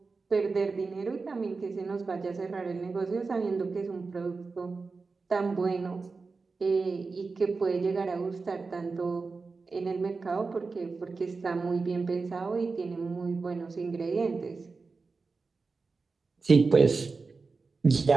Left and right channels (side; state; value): left; quieter; 4.3 dB